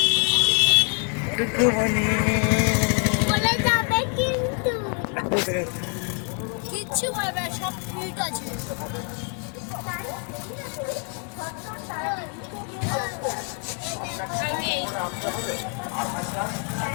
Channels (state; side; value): quieter; right; 39.5 dB